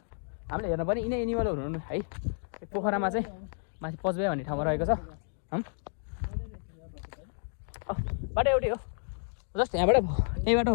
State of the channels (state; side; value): silent; right; digital silence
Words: हामीले हेर्नु पनि यिनै एनिमलहरू हुनु है पोखरामा चाहिँ माथि पचबे भन्ने ठाउँमा रहेको छ बाटो एउटै हो जस्ट यहीँबाट